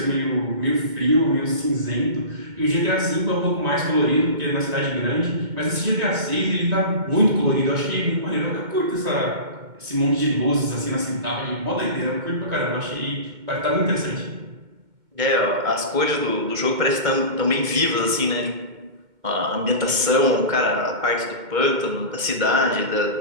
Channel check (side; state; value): left; late; 2.2 ms